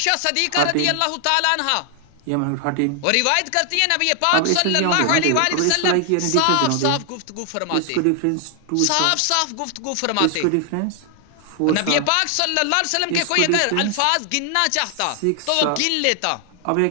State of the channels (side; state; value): both; different; correlation 0.00